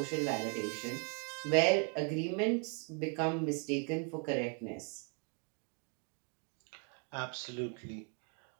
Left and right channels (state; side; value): quieter; left; 36.0 dB